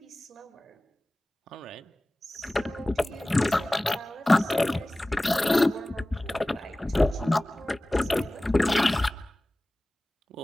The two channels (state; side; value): normal; both; correlation 0.98